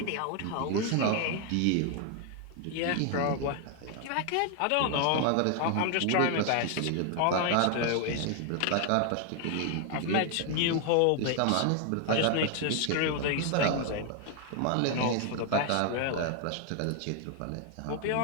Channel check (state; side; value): different; both; correlation 0.00